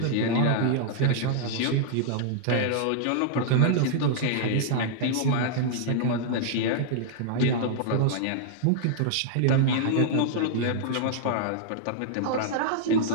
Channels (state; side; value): different; both; correlation -0.01